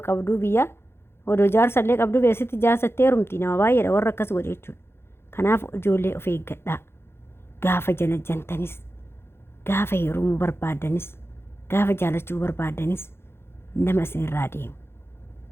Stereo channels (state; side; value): late; right; 0.12 ms